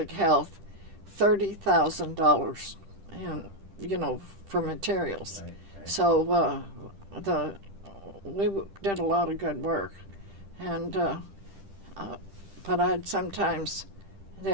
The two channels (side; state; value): left; late; 10 ms